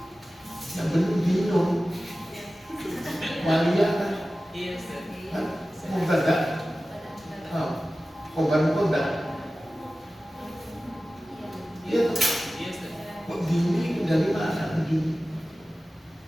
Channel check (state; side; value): normal; both; correlation 0.96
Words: yang benar dinun waliyah kan mubtada khobar mubtada iya kok dini dari mana ujung